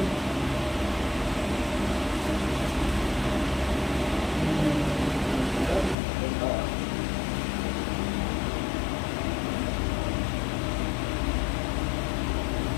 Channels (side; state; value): right; drops out; at 6.0 s